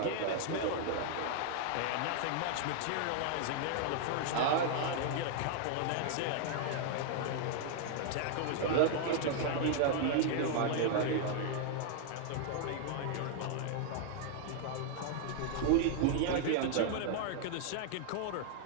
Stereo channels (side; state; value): both; different; correlation 0.00